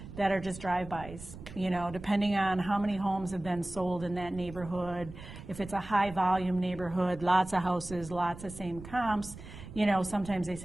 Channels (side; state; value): right; noise; rumble, 14 dB below the sound